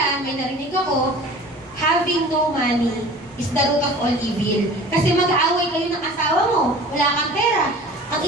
may narinig ako, having no money is the root of all evil. Kasi mag-aaway kayo ng asawa mo, wala kang pera. Ang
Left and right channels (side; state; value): both; normal; correlation 0.43